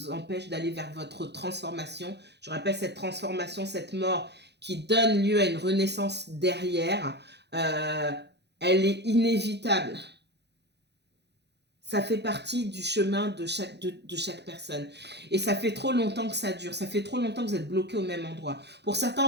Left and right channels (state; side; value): late; left; 0.50 ms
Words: empêche d'aller vers votre transformation. Je rappelle cette transformation, cette mort qui donne lieu à une renaissance derrière, elle est inévitable. Ça fait partie du chemin de chaque personne. Et ça fait trop longtemps que ça dure. Ça fait trop longtemps que vous êtes bloqué au même endroit. Pour certains,